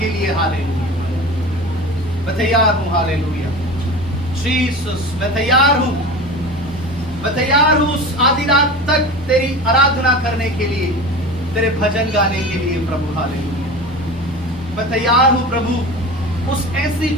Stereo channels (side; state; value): both; normal; correlation 0.32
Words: लिए। हालेलुया, मैं तैयार हूं। हालेलुया जीसस, मैं तैयार हूं, मैं तैयार हूं उस आधी रात तक तेरी आराधना करने के लिए, तेरे भजन गाने के लिए प्रभु। हालेलुया, मैं तैयार हूं प्रभु उस ऐसी